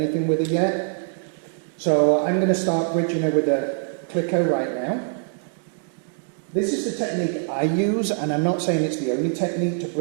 with her yet. So I'm going to start bridging her with a clicker right now. This is the technique I use, and I'm not saying it's the only technique to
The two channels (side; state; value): left; silent; 63 dB below the other